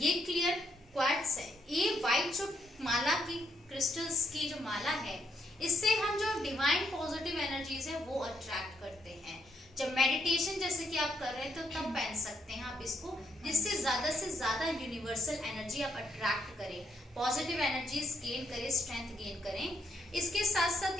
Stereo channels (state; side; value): normal; both; correlation 0.76